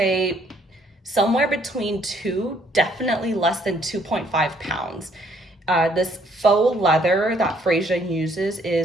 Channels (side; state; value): both; normal; correlation 0.66